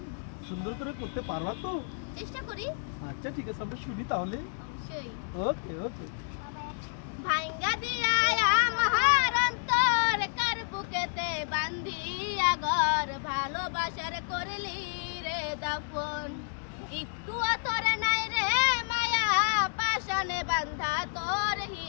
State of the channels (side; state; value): right; silent; digital silence